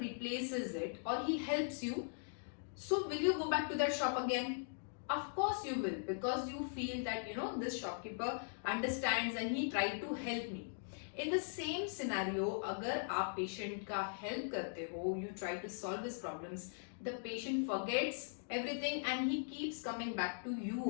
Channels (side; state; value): right; silent; digital silence